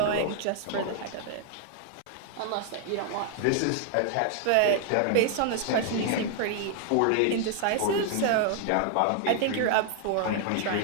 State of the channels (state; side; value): different; both; correlation 0.00